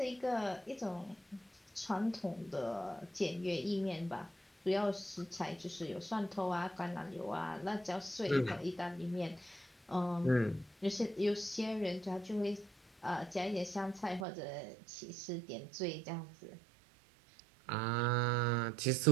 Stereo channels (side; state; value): left; drops out; at 14.2 s